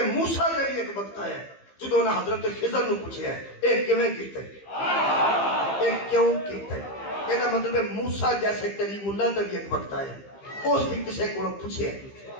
موسیٰ کا ایک وقت آیا جدوں نے حضرت خضر نو پوچھے ہے ایک کیویں کیتے ایک کیوں کیتے یہ مطلب ہے موسیٰ جیسے کلیم اللہ تک ایک وقت آیا اس بھی کسی کو پوچھے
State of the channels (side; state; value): right; late; 15 ms